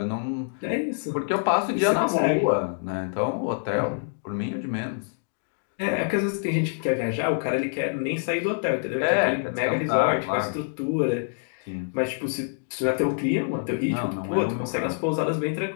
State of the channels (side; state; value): right; silent; digital silence